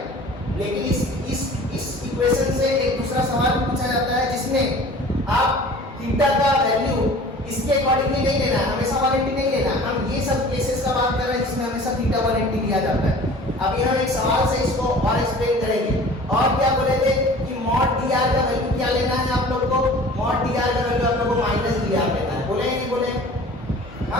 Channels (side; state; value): both; normal; correlation 0.44